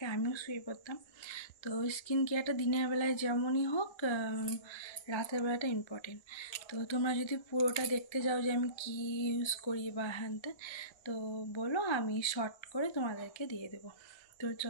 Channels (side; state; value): right; late; 1.3 ms